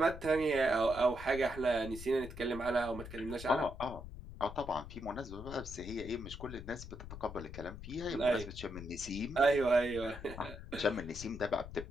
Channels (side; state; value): left; noise; rumble, 11 dB below the sound